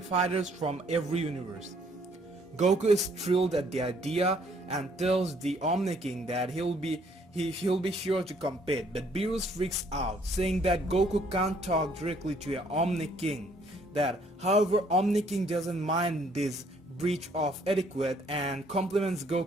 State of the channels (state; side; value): normal; both; correlation 0.64